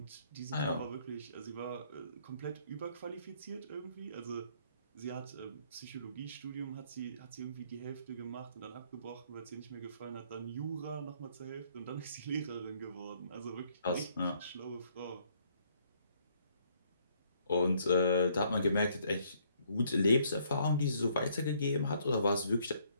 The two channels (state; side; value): inverted; both; correlation -0.66